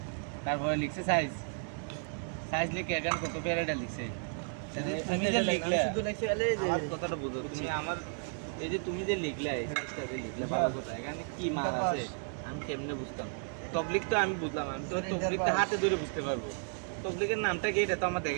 তারপরে লিখছে সাইজ, সাইজ লিখে এখানে কত প্যারাটা লিখছে। তুমি যে লিখলে শুধু লিখছে আলে যে কথাটা বুঝো তুমি আমার, এই যে তুমি যে লিখলে এই সাইজটা যে লিখলে ভালো কথা, এখানে কি মাল আছে আমি কেমনে বুঝতাম? তবলিক তো আমি বুঝলাম, আমি তো তবলিকটা হাতে ধরে বুঝতে পারবো, তবলিকের নামটা কি এটা তো আমার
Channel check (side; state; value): left; silent; 56 dB below the other